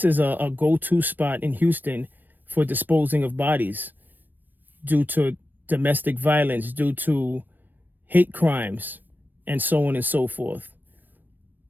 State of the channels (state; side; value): late; left; 0.091 ms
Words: is a go-to spot in Houston for disposing of bodies due to domestic violence, due to hate crimes, and so on and so forth.